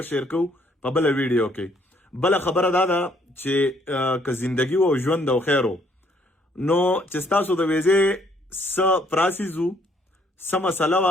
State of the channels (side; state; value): both; normal; correlation 0.66